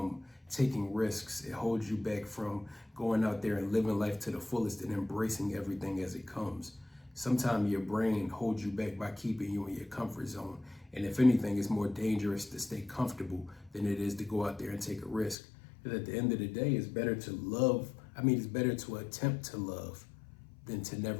taking risks. It holds you back from going out there and living life to the fullest and embracing everything as it comes. Sometimes your brain holds you back by keeping you in your comfort zone. And if anything, it's more dangerous to stay comfortable than it is to go out there and take a risk. Because at the end of the day, it's better to love. It's better to attempt to love than to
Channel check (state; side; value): drops out; right; at 15.4 s